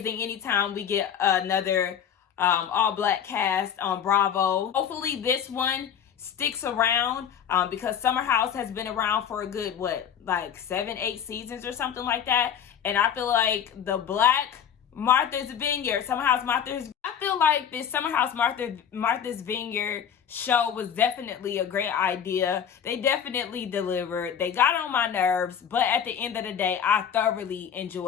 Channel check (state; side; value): quieter; right; 8.5 dB